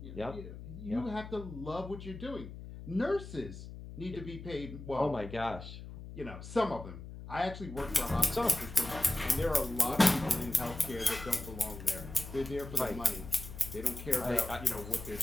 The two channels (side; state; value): left; noise; hum, 12 dB below the sound